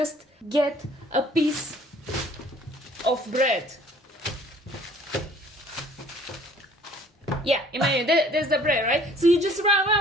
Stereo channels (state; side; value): normal; both; correlation 0.55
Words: get a piece of bread. Yeah, imagine there's the bread, right? So you just run.